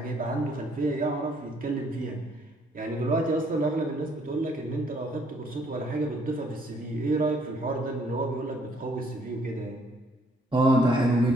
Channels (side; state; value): both; normal; correlation 0.66